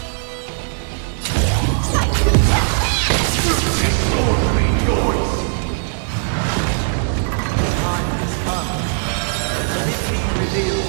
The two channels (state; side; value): silent; left; digital silence